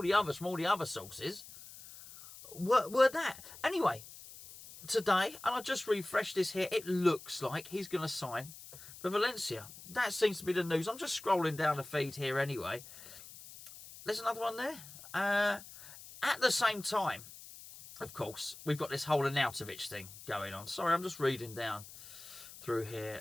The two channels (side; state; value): left; noise; hiss, 16 dB below the sound